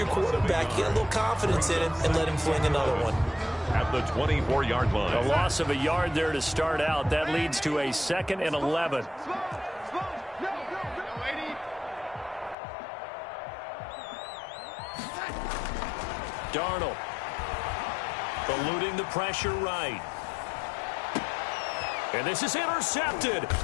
quarterback, you get a little confidence in him, and let him fling another one. At the 24-yard line. A loss of a yard there to start out. That leads to a 2nd and 11. Darnold. Eluding the pressure right. And this is intercepted.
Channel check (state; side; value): drops out; right; at 12.6 s